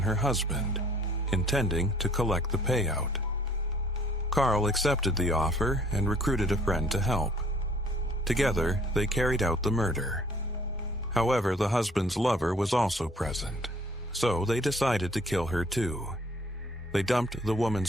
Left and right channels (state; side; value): normal; both; correlation 0.58